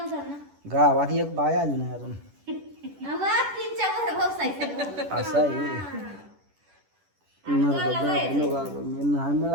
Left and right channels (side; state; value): left; late; 10 ms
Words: ना गावात एक बाय आली नाही अजून आवाज तीनच्या वर व्यवसाय असं आहे मी नाही